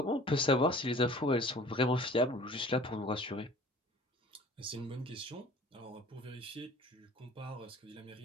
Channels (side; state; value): both; normal; correlation 0.46